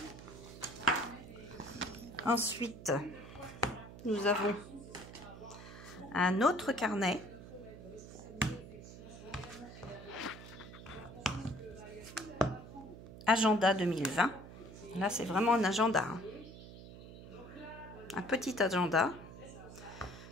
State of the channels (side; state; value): right; noise; hum, 14 dB below the sound